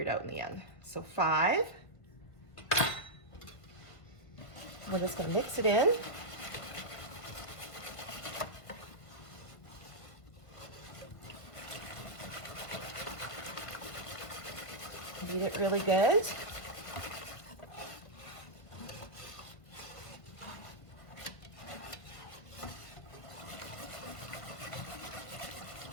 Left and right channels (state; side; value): late; right; 1.6 ms